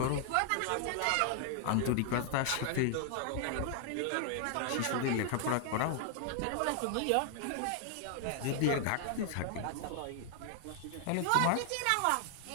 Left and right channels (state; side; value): different; both; correlation 0.00